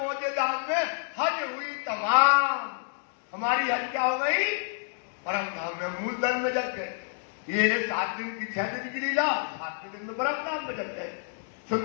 धाम में हज हुई तमाम। हमारी हज क्या हो गई? परम धाम में, मूल धर्म में जग गए। ये 7 दिन की 6 दिन की लीला, 7वें दिन में परम धाम में जग गए।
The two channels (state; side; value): silent; right; digital silence